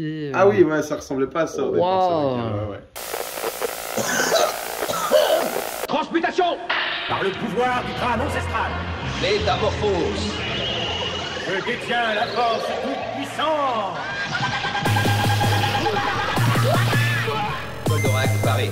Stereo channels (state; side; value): identical; both; correlation 1.00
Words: Ah oui, ouais, ça ressemblait pas à ça. Wow. Transmutation par le pouvoir du crâne ancestral. Métamorphose. Je détiens la force toute puissante. Goldorak paré.